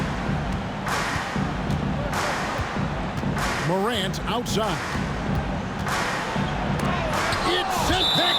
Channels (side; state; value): both; identical; correlation 1.00